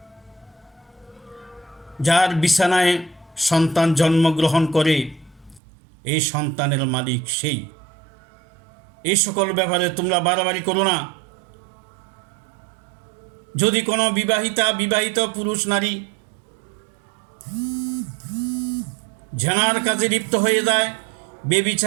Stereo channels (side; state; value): left; drops out; at 5.6 s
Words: যার বিছানায় সন্তান জন্মগ্রহণ করে এই সন্তানের মালিক সেই। এই সকল ব্যাপারে তোমরা বাড়াবাড়ি করো না। যদি কোনো বিবাহিত পুরুষ নারী জেনার কাজে লিপ্ত হয়ে যায়,